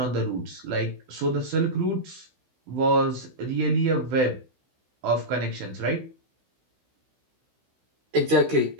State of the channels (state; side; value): late; left; 16 ms